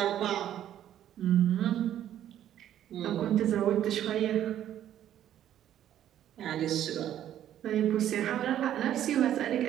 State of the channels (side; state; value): left; quieter; 11.2 dB